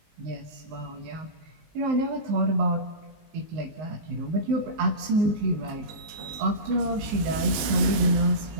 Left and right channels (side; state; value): left; late; 20 ms